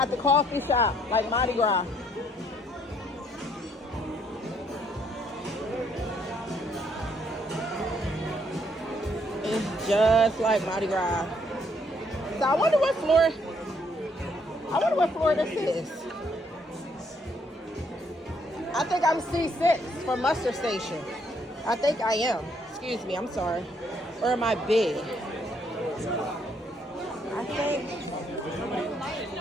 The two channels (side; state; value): both; normal; correlation 0.69